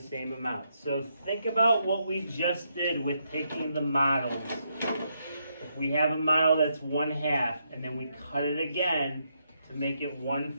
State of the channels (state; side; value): inverted; both; correlation -0.79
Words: amount. So think about what we just did with taking the models. If we have a model that's 1/2 and then we cut it again to make it